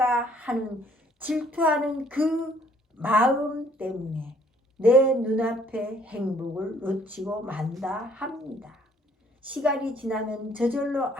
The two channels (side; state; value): both; normal; correlation 0.62